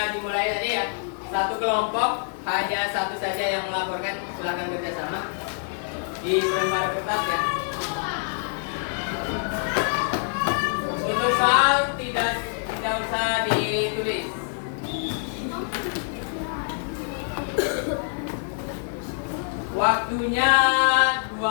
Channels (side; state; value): right; silent; 60 dB below the other